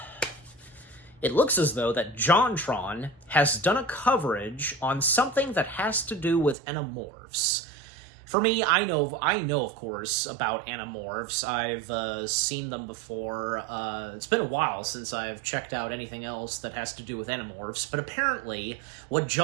it looks as though that JonTron has done a coverage on something that has to do with Animorphs. For me, I know of course, about Animorphs. I've seen them before. It's been a while since I've checked out anything else that has to do with Animorphs, but apparently what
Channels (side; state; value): left; drops out; at 6.6 s